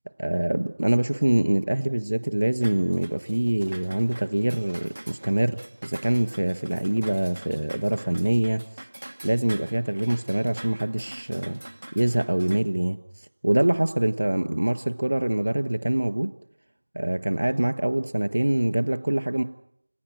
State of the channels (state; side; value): inverted; both; correlation -1.00